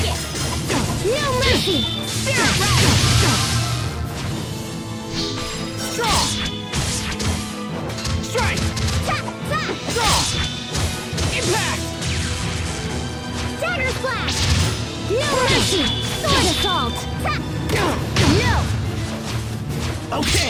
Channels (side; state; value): both; identical; correlation 1.00